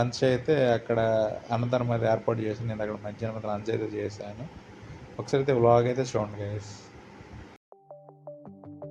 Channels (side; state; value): both; identical; correlation 1.00